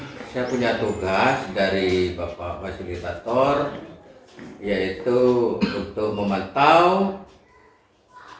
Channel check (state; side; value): identical; both; correlation 1.00